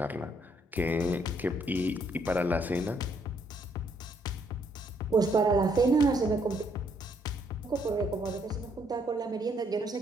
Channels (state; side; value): normal; both; correlation 0.71